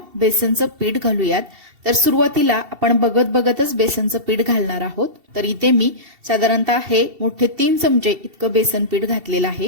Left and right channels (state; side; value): late; left; 2.7 ms